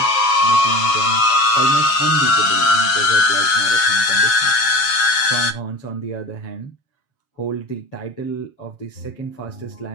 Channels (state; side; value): late; right; 7.3 ms